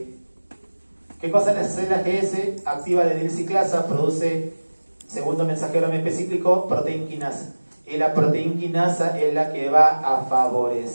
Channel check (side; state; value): both; inverted; correlation -1.00